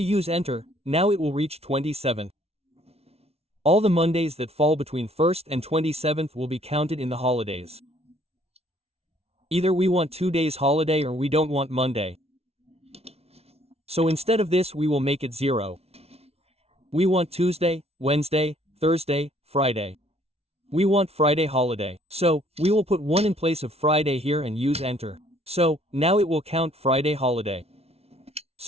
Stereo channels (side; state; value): left; late; 0.30 ms